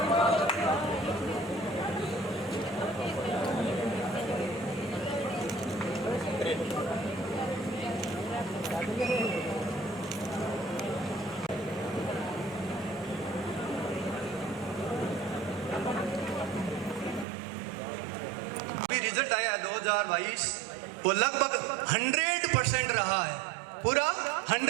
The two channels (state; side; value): drops out; left; at 17.2 s